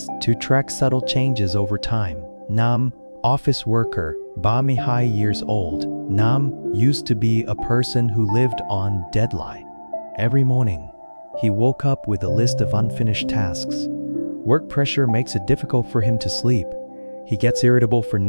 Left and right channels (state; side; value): inverted; both; correlation -1.00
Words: to track subtle changes over time. Office worker, Bami High years old. Used to be a person who lived on deadline. Every morning, he woke up with a list of unfinished tasks. Work pressure makes it difficult for him to sleep. He gets irritable for